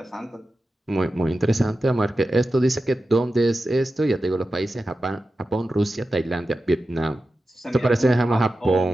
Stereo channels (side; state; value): both; normal; correlation 0.92